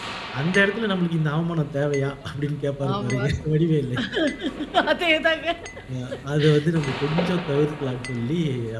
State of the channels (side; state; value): both; identical; correlation 1.00